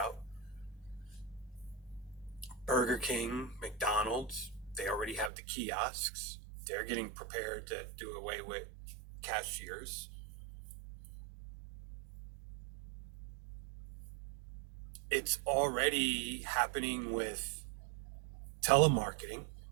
Burger King, McDonald's, they already have the kiosks. They're getting prepared to do away with cashiers. It's already happening with telemarketing.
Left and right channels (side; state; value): left; drops out; at 5.3 s